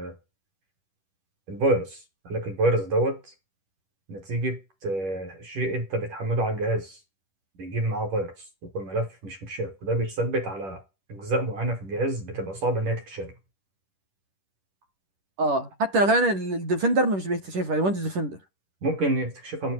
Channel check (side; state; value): left; late; 10 ms